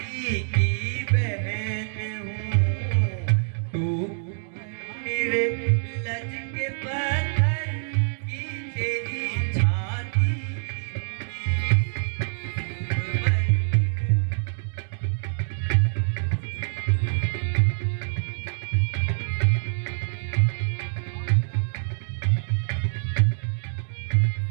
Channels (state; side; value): silent; left; 61 dB below the other